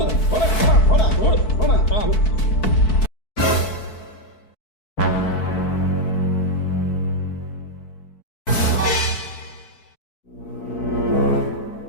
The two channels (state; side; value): late; right; 4.6 ms